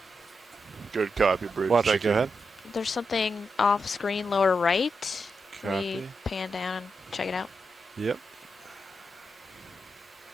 Good copy, Bridge. Watch it, go ahead. There's something off screen lower right. Copy. We pan down and check it out. Yep.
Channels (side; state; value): both; normal; correlation 0.85